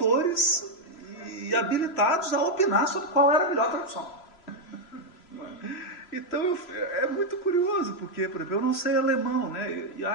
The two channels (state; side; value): late; right; 3.0 ms